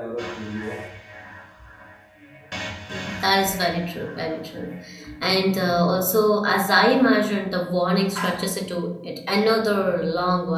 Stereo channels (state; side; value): identical; both; correlation 1.00